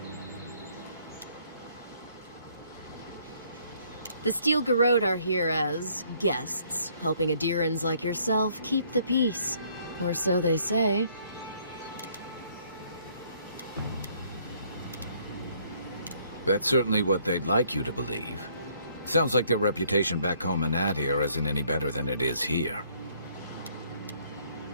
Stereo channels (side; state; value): both; inverted; correlation -0.64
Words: The Steel Garrote are here as guests, helping Adirans like yourself keep the peace. Or so they say. That's certainly what they'd like you to believe. Sounds like their reputation back home in Adir isn't any better than it is here.